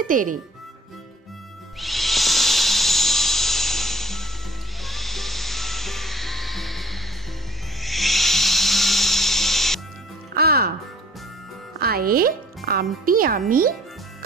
তেরে। আ আয়ে আমটি আমি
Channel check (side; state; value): both; normal; correlation 0.53